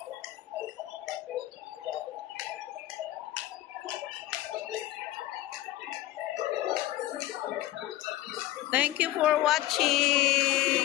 thank you for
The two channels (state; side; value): quieter; right; 15.5 dB